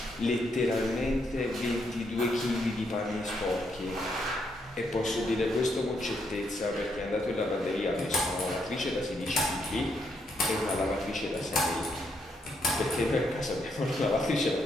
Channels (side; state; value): both; normal; correlation 0.76